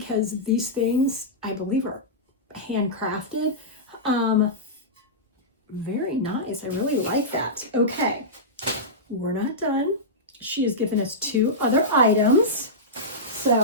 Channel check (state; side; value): normal; both; correlation -0.13